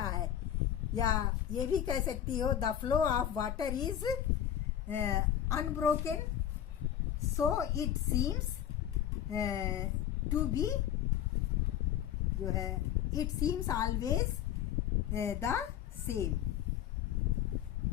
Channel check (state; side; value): quieter; right; 10.6 dB